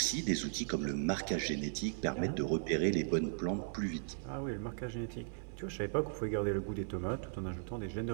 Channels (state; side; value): silent; left; digital silence